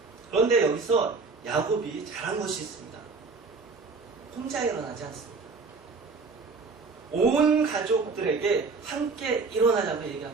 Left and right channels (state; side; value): quieter; left; 4.4 dB